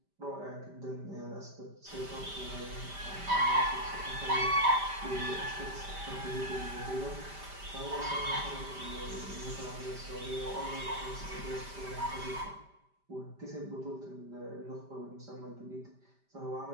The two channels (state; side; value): late; left; 5.1 ms